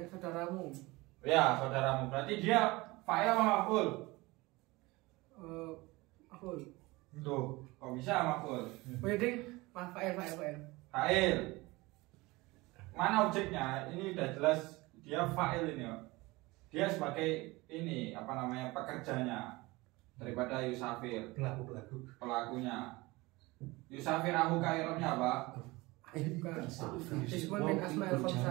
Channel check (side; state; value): left; quieter; 22.1 dB